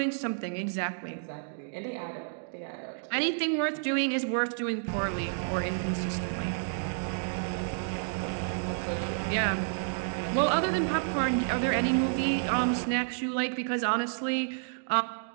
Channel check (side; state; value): left; silent; digital silence